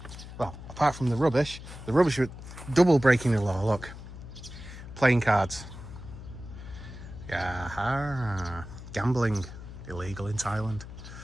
Well, apart from the rubbish was double breaking the law, look. Playing cards. Yeah, gambling, illegal in Thailand.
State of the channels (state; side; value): noise; left; hum, 13 dB below the sound